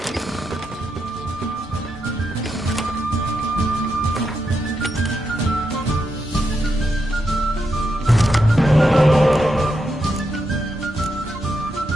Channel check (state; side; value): normal; both; correlation 0.84